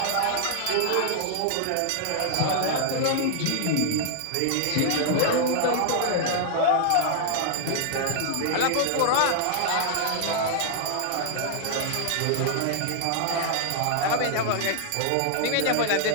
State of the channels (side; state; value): both; different; correlation -0.01